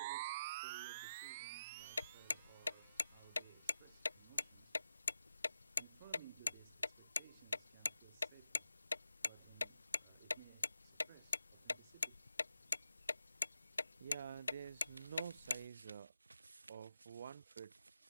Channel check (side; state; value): both; inverted; correlation -0.88